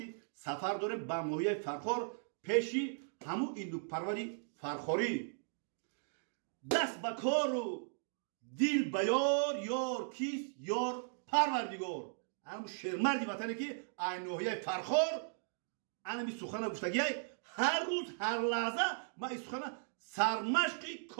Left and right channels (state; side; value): silent; left; digital silence